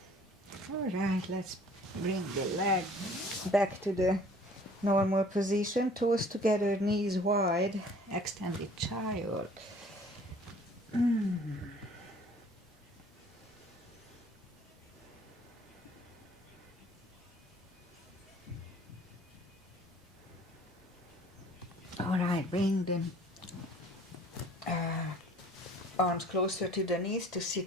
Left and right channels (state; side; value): normal; both; correlation 0.52